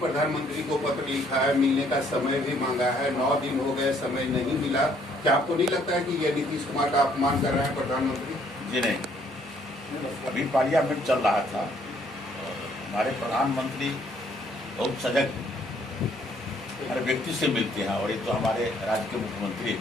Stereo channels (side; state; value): both; normal; correlation 0.65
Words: को पत्र लिखा है, मिलने का समय भी मांगा है, 9 दिन हो गए, समय नहीं मिला। क्या आपको नहीं लगता है कि ये नीतीश कुमार का अपमान कर रहे हैं प्रधानमंत्री? जी नहीं, अभी पार्लियामेंट चल रहा था और हमारे प्रधानमंत्री बहुत सजग हर व्यक्ति से मिलते हैं, और ये तो हमारे राज्य के मुख्यमंत्री